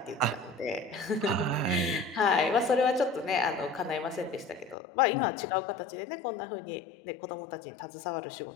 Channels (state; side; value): drops out; right; at 4.8 s